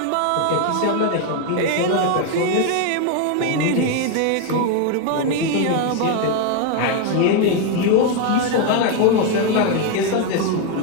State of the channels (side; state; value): both; different; correlation 0.01